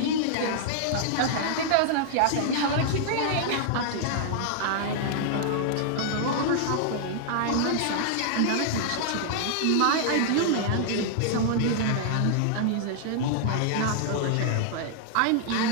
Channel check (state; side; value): different; both; correlation -0.01